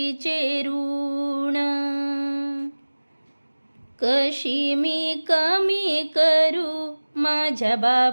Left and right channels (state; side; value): inverted; both; correlation -1.00